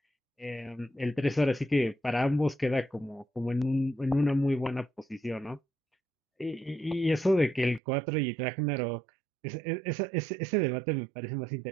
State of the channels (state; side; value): drops out; left; at 7.8 s